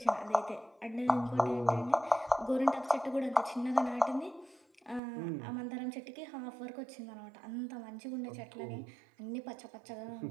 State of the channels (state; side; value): drops out; left; at 5.0 s